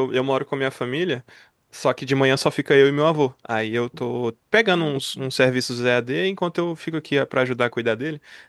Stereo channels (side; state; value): both; identical; correlation 1.00